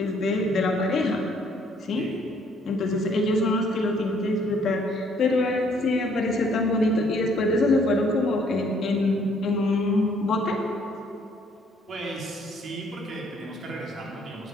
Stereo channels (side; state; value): both; normal; correlation 0.64